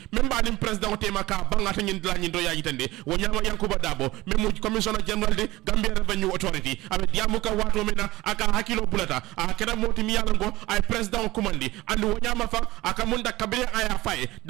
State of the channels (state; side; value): quieter; left; 18.5 dB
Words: memba dim president tema ka bangata nyin la nyin do ya itande wanyama yankuba dabo memo commissioner general de Gambia Revenue Authority abe diamu ka wato mena aka hakilo bulata akeda moti mi yalango ay president commandi andu wonyama fa akamunda kabire aya faye